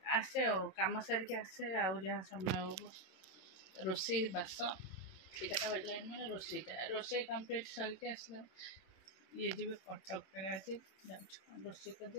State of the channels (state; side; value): late; right; 27 ms